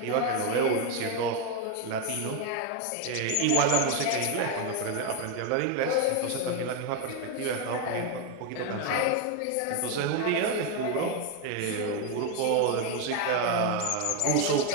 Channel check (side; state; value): both; different; correlation 0.02